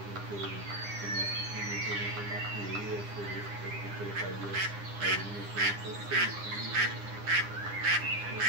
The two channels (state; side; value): late; left; 9.9 ms